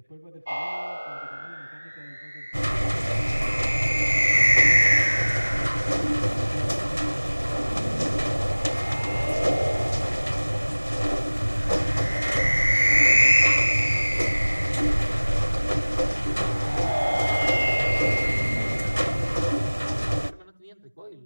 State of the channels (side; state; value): both; inverted; correlation -1.00